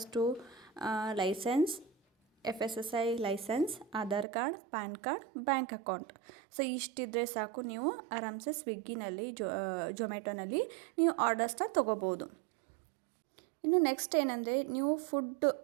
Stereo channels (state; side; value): drops out; left; at 4.2 s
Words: licence, FSSAI licence, Aadhaar card, PAN card, bank account. So ಇಷ್ಟಿದ್ರೆ ಸಾಕು, ನೀವು ಆರಾಮ್ಸೆ ಸ್ವಿಗ್ಗಿನಲ್ಲಿ ಝೊಮ್ಯಾಟೊನಲ್ಲಿ ನೀವು ಆರ್ಡರ್ಸ್ನ ತೊಗೋಬೋದು. ಇನ್ನು ನೆಕ್ಸ್ಟ್ ಏನಂದರೆ ನೀವು ಫುಡ್